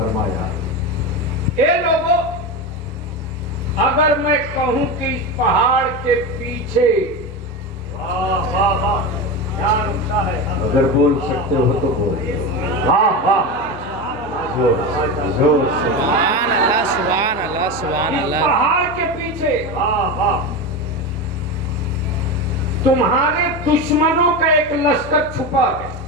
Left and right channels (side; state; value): both; normal; correlation 0.20